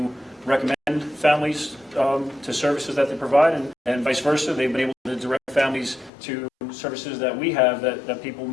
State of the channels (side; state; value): right; drops out; at 6.1 s